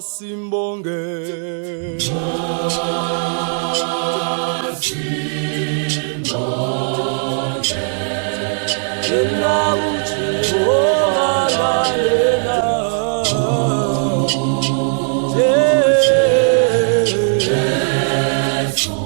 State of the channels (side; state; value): left; silent; 58 dB below the other